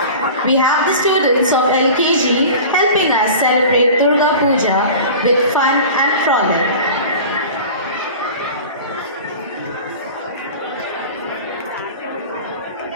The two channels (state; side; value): inverted; both; correlation -0.37